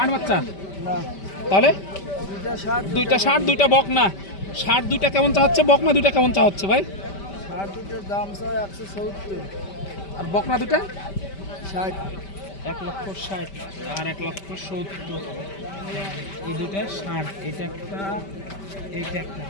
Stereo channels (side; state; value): right; late; 5.1 ms